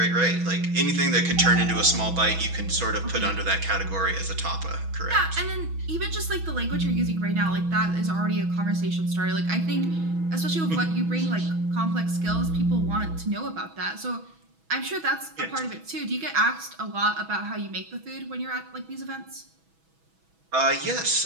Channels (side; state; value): left; late; 6.1 ms